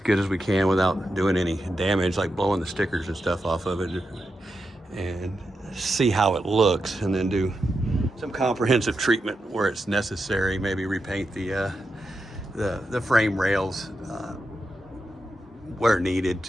as we can without doing any damage, like blowing the stickers and stuff off of it, and see how it looks, and then do some comprehensive treatment where it's necessary. Maybe repaint the frame rails where needed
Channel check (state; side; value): normal; both; correlation 0.87